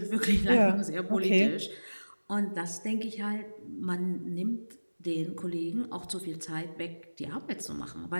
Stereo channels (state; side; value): inverted; both; correlation -1.00